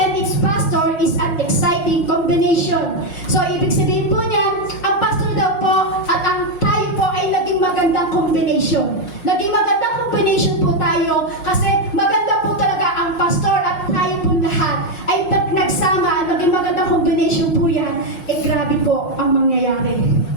its pastor is an exciting combination. So, ibig sabihin po niyan, ang pastor daw po at ang tayo po ay naging magandang combination. Naging magandang combination po tayo kasi maganda po talaga ang pastor at tayo po lahat ay nagsama, naging magandang combination po yan, grabe po ang mangyayari.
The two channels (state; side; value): late; right; 5.6 ms